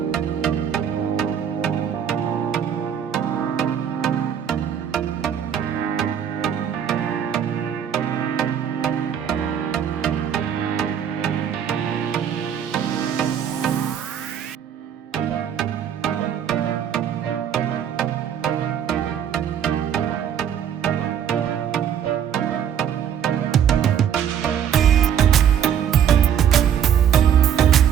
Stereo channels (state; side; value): quieter; left; 8.9 dB